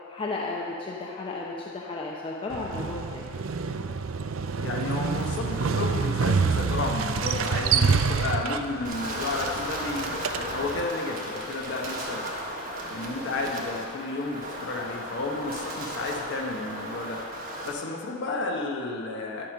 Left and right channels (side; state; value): both; normal; correlation 0.33